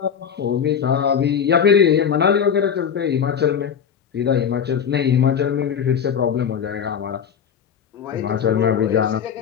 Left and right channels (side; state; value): right; quieter; 7.7 dB